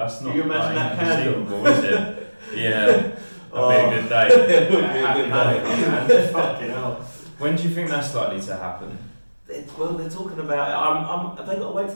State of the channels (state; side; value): inverted; both; correlation -1.00